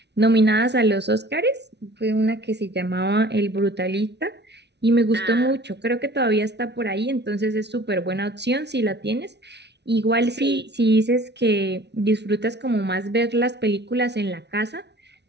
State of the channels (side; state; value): left; late; 0.50 ms